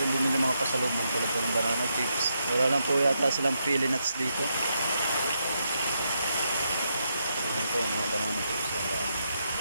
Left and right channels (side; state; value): both; inverted; correlation -0.81